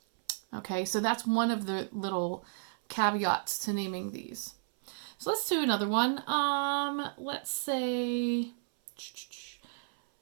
Okay, so that's one of the little caveats to naming these. So let's do another one. Let's say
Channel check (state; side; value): silent; left; 56 dB below the other